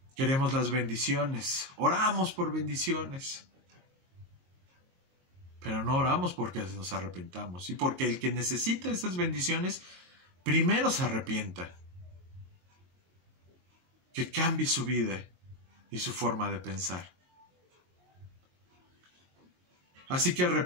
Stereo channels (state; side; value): late; left; 22 ms